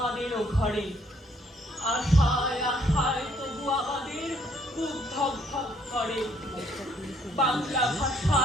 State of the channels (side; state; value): both; normal; correlation 0.66